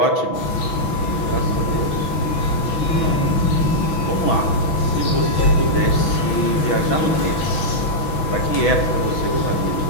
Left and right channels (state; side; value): late; right; 6.1 ms